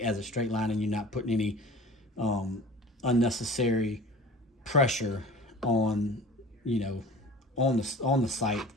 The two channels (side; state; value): both; normal; correlation 0.41